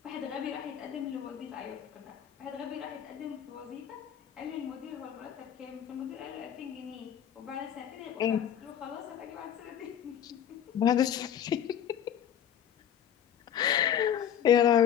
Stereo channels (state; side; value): quieter; right; 9.6 dB